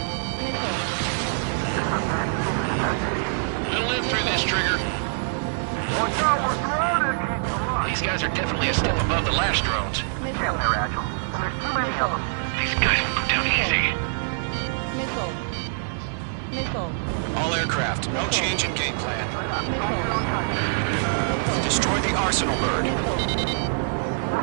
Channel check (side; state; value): left; silent; 62 dB below the other